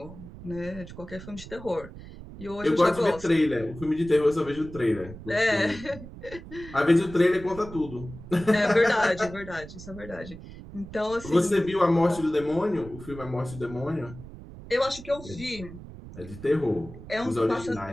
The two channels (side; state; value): right; noise; rumble, 15 dB below the sound